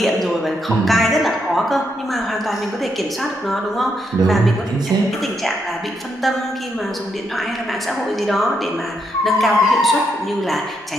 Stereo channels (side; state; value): both; normal; correlation 0.79